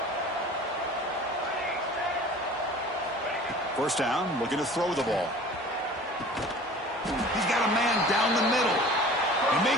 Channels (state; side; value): normal; both; correlation 0.43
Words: First down, looking to throw the ball. He's got a man down the middle. And